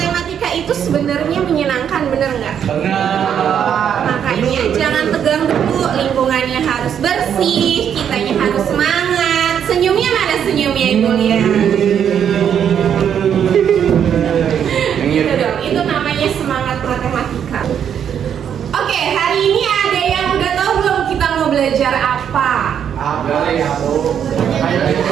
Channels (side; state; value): left; quieter; 8.6 dB